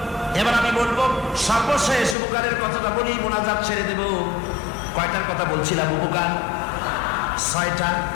এবার আমি বলবো সর্বশেষ উপকারের কথাটা বলি, মোনাজাত ছেড়ে দেব। কয়টার কথা বলছিলাম? উপকার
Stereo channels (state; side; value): drops out; right; at 2.1 s